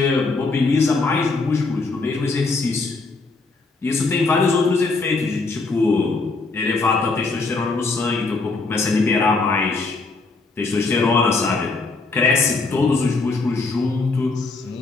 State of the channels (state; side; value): quieter; right; 3.8 dB